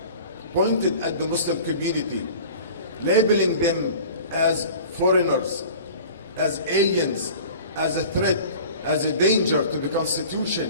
pointed at the Muslim community, labeling them as foreigners, as aliens, as a threat, as a danger to the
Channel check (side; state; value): both; inverted; correlation -0.42